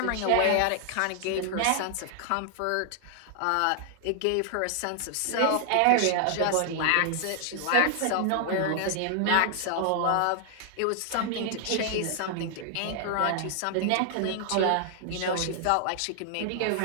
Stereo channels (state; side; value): different; both; correlation 0.00